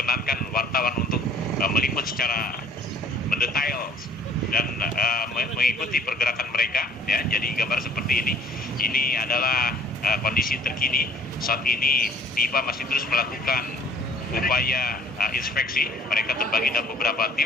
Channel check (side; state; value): both; normal; correlation 0.56